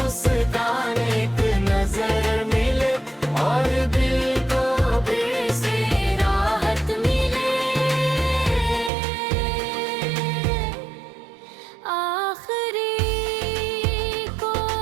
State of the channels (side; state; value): left; drops out; at 8.9 s